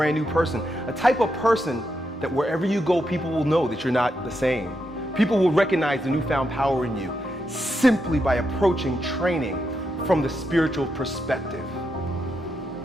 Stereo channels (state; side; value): normal; both; correlation 0.83